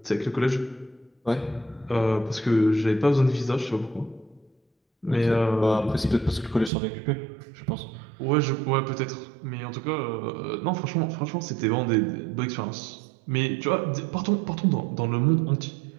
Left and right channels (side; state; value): left; drops out; at 6.7 s